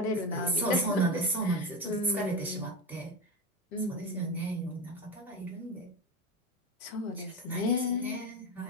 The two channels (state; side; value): normal; both; correlation 0.20